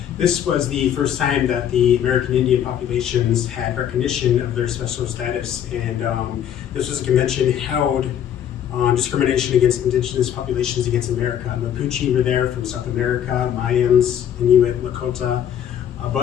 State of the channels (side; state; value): right; quieter; 9.8 dB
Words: This was the first time that the American Indian populations had recognition of their special status, and this was a convention held on discrimination against indigenous populations against America. Mapuche were there from South America, Mayans, Inuit, Lakota, a